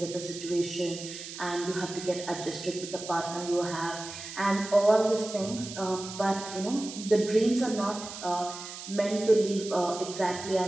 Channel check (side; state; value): right; noise; hiss, 11 dB below the sound